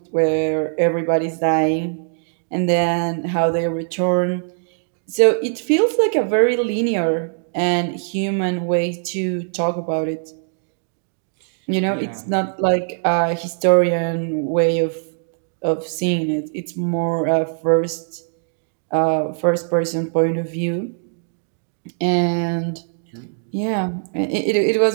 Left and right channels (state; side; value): silent; left; 65 dB below the other